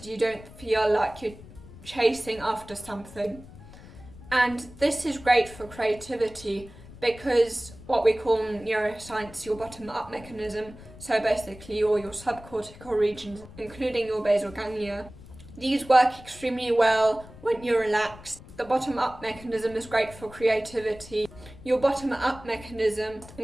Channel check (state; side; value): noise; left; rumble, 18 dB below the sound